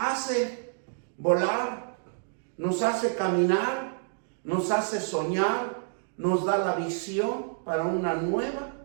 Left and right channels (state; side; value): silent; left; digital silence